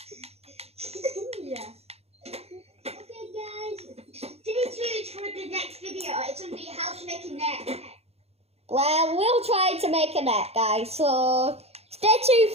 Yeah. Okay, guys. Stay tuned for the next video. It's going to be how to make a net. Well, we'll try to make a net, guys. So stay tuned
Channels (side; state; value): left; late; 0.30 ms